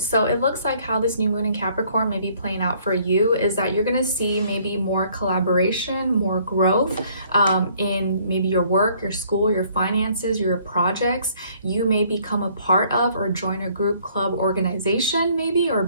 So it looks like how this new moon in Capricorn may be playing out for you is that you're going to see maybe more collaboration, more growth in maybe your work, your school, your finances, your projects. You may become a part of or join a group, club, organization maybe, or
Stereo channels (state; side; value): inverted; both; correlation -0.61